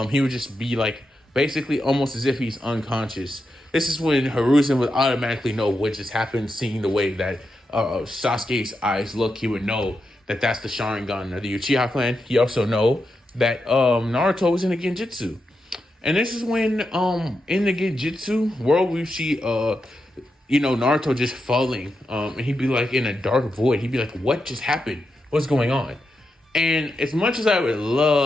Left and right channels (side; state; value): both; normal; correlation 0.86